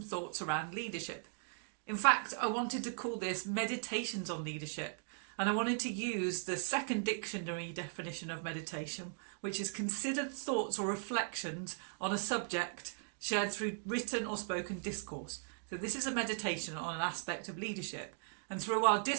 thoughts around leadership. In fact, I wanted to call this Meditations on Leadership, and I wanted to use the second dictionary definition of meditation, which is considered thoughts or reflections on a subject shared through written or spoken discourse. So this is a meditation on an aspect of leadership. And through our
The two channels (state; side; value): silent; left; digital silence